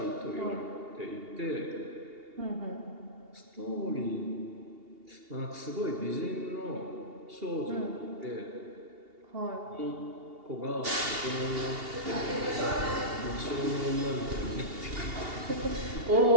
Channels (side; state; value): left; late; 2.8 ms